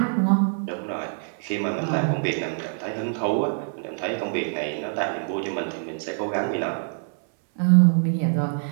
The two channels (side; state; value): left; silent; 62 dB below the other